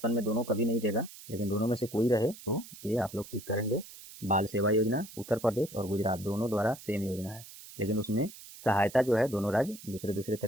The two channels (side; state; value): right; noise; hiss, 16 dB below the sound